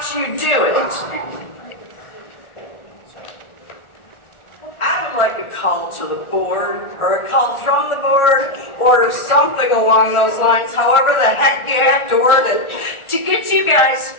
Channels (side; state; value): right; late; 1.4 ms